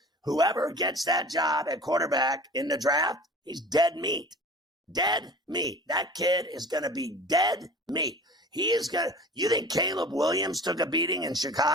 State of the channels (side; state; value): both; normal; correlation 0.41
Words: Whoever gets that job at quarterback in the draft, he's dead meat. Dead meat. That kid is going to be dead meat. He is going to, you think Caleb Williams took a beating in